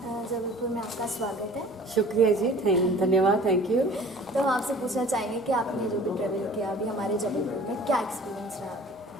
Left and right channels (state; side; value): normal; both; correlation 0.46